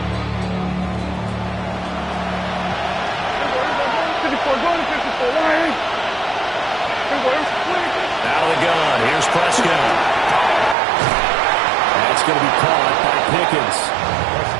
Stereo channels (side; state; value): left; drops out; at 10.8 s